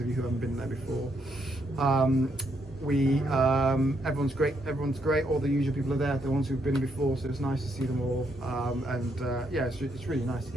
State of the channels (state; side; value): normal; both; correlation 0.76